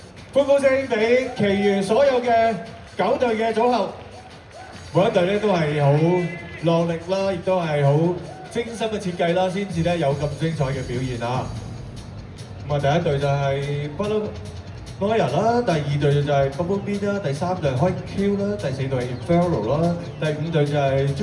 歡呼聲俾其餘所有嘅9隊嘅組合，每一隊咧都係好落力啦，亦都係好精心嘅設計啦，先至咧有咁精彩嘅表現啊！咁啊，第一隊就係Butterfly啦，第二隊就係 Bumblebee 啦，第三隊係 High Q 啦，第四隊係 Inferno 啦，第五隊就係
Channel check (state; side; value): identical; both; correlation 1.00